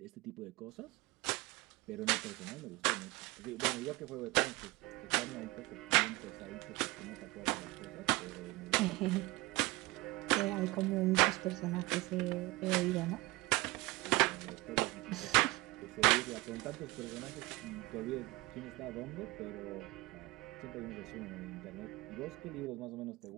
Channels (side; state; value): left; quieter; 21.7 dB